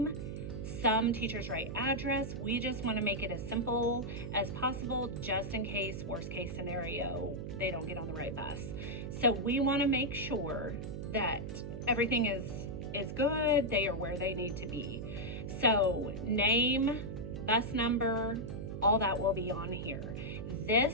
Some teachers write address. We just want to make it as simple as possible, just in case, worst case scenario, they don't get on the right bus. So we want to make sure that everything is is good. They are where they need to be. So name, bus number, all that will be on here.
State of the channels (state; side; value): noise; right; hum, 7 dB below the sound